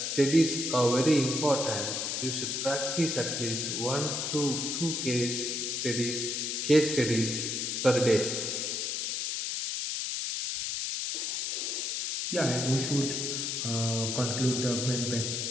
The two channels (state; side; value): noise; left; hiss, 1 dB below the sound